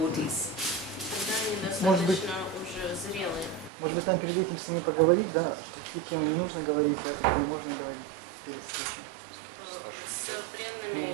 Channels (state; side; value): drops out; left; at 3.7 s